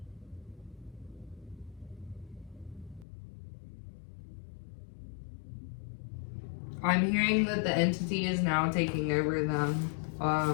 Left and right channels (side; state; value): right; drops out; at 3.1 s